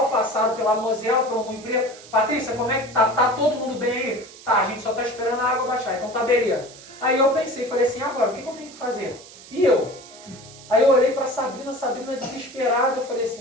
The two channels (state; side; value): noise; right; hiss, 19 dB below the sound